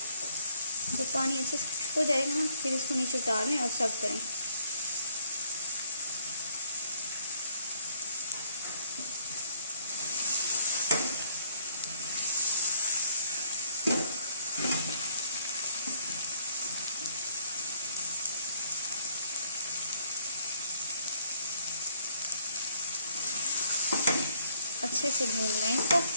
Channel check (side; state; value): both; inverted; correlation -0.63